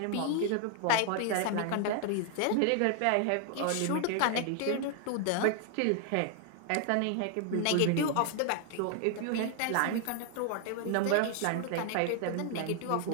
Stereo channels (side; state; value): both; different; correlation 0.00